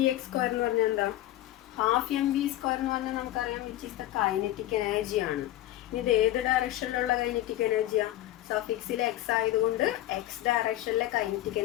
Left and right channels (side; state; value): right; quieter; 14.7 dB